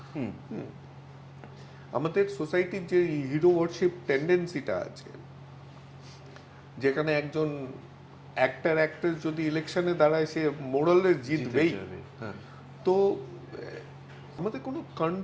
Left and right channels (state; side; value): identical; both; correlation 1.00